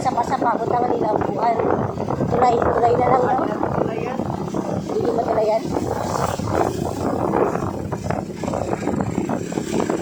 sapa-sapa, butangan nila ang kuan. Tulay na lang. No? Ayan. Hindi matulayan.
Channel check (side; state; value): both; identical; correlation 1.00